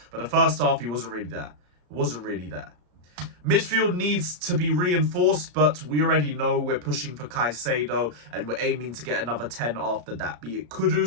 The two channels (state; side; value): late; left; 34 ms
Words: But the first half, he wasn't really there. It wasn't really there. Midfield needs to be reinforced, but we already know we're pushing for Caicedo, and we're aiming to get another 10 after that, be it